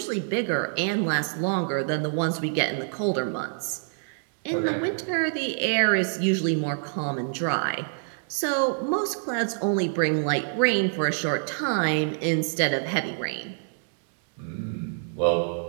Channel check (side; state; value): left; silent; 61 dB below the other